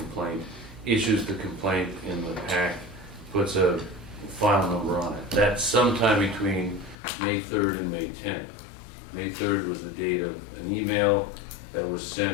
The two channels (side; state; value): right; drops out; at 7.0 s